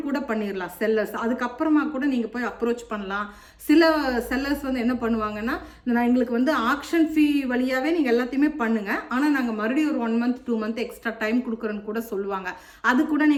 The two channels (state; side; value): identical; both; correlation 1.00